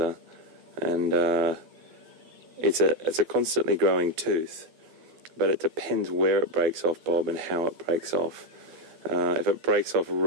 and it's a constantly growing tooth. But it depends where it breaks off, Bob, and how it breaks off. If it breaks off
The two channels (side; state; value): left; late; 13 ms